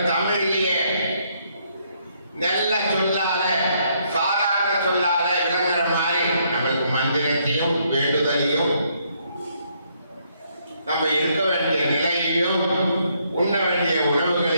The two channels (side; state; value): both; inverted; correlation -0.72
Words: தமிழிலேயே நல்ல சொல்லால, சாதாரண சொல்லால விளங்குற மாதிரி நம்மளுக்கு மந்திரத்தையும் வேண்டுதலையும், நம்ம இருக்க வேண்டிய நிலையையும், உண்ண வேண்டிய